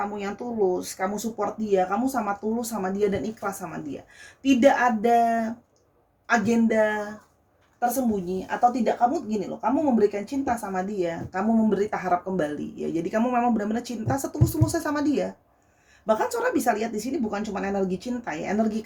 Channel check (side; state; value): both; identical; correlation 1.00